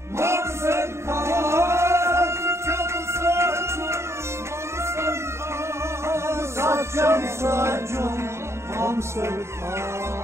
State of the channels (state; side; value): late; left; 0.13 ms